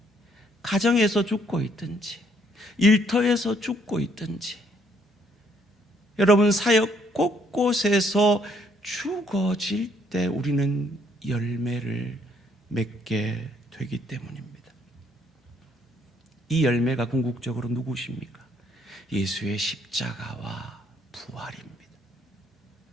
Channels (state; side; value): normal; both; correlation 0.68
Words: 가정에서 죽고 있든지, 일터에서 죽고 있든지, 여러분 사역 곳곳에서 죽어질 때 우리는 열매를 맺게 되기 때문입니다. 이 열매가 궁극적으로 누구십니까? 예수의 십자가와 부활입니다.